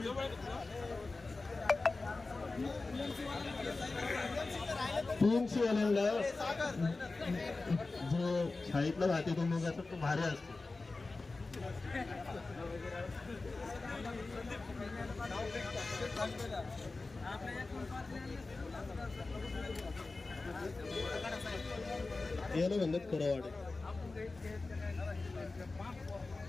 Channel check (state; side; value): quieter; right; 3.5 dB